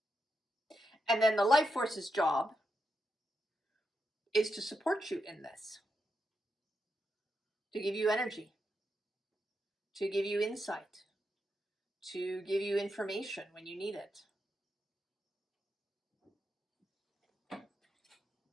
And then the life force's job is to support you in this, to give you energy, to give you insight, to give you information when you need it.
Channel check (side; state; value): both; normal; correlation 0.85